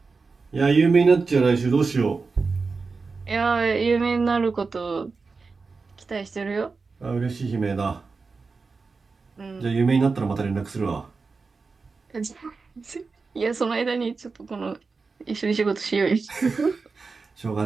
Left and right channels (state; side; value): quieter; left; 4.4 dB